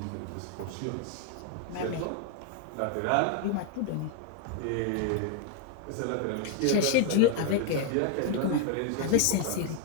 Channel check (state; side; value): different; both; correlation 0.00